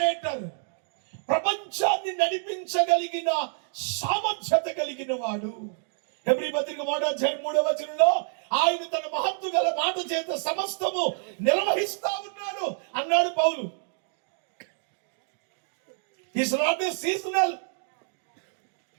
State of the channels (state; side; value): silent; left; digital silence